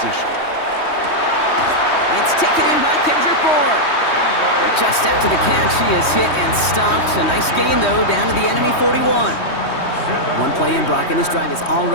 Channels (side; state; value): right; late; 3.2 ms